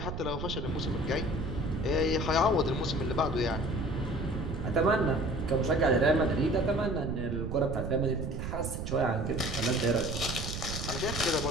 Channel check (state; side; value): noise; right; rumble, 5 dB below the sound